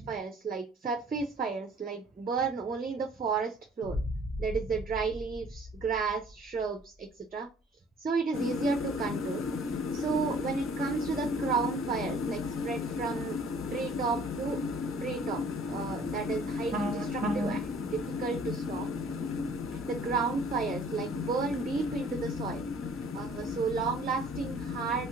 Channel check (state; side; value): normal; both; correlation 0.54